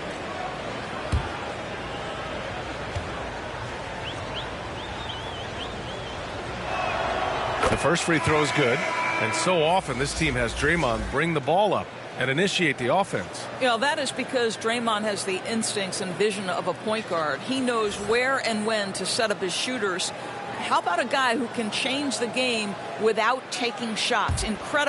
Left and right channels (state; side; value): identical; both; correlation 1.00